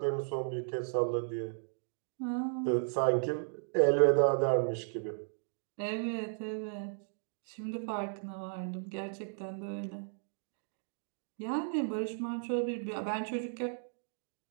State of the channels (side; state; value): left; silent; digital silence